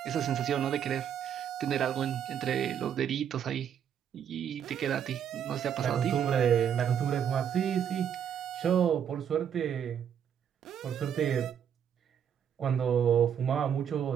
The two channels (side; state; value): left; quieter; 8.7 dB